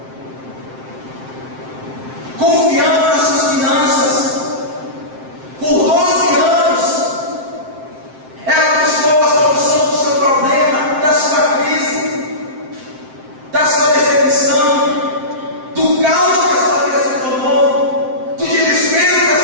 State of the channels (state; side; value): late; left; 7.6 ms